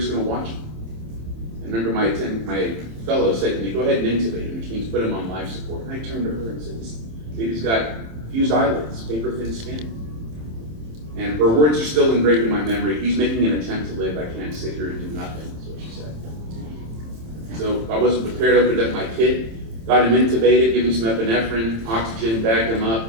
going to watch him. And remember my fellow said to me, go ahead and intubate him, which means put him on life support. And I turned to her and said, this baby's got fused eyelids, paper thin skin. And her words are still engraved in my memory. He's making an attempt to live. I can't sit here and do nothing, is what she said. So I wasn't prepared. I opened up my kit, got him intubated, gave him some epinephrine, oxygen, bagged him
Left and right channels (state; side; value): late; left; 27 ms